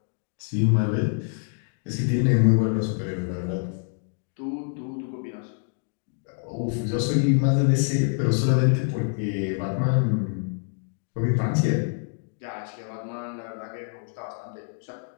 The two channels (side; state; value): right; silent; 61 dB below the other